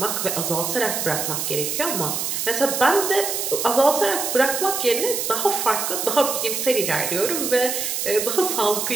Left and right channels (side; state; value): right; noise; hiss, 2 dB below the sound